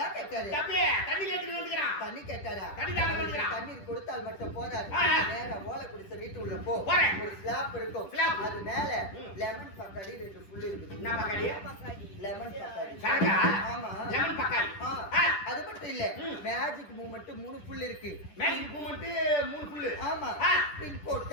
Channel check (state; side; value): late; right; 10 ms